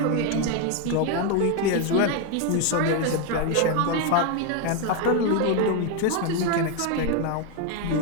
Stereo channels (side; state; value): both; different; correlation 0.01